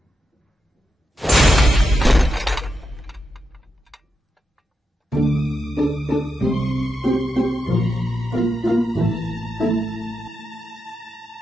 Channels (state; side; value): normal; both; correlation 0.86